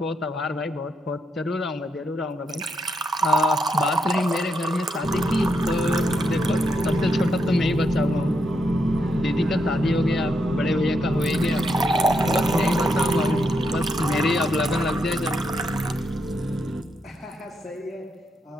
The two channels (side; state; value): both; normal; correlation 0.80